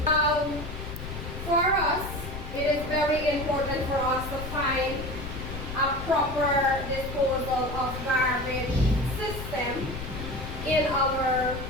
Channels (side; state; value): left; noise; rumble, 8 dB below the sound